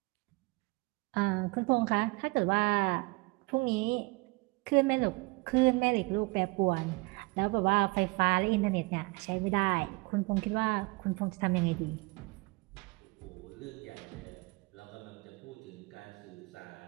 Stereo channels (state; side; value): quieter; left; 25.7 dB